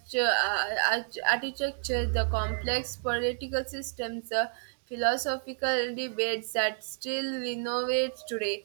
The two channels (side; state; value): left; silent; digital silence